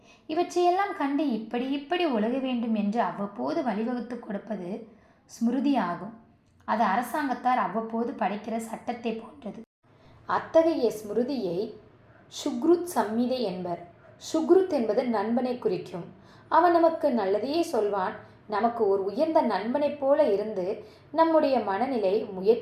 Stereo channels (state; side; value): identical; both; correlation 1.00